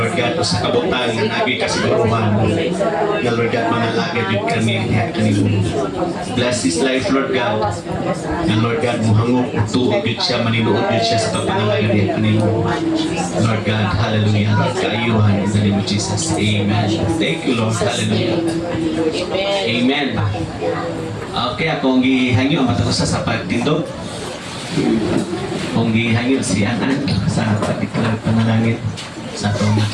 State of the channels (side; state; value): both; identical; correlation 1.00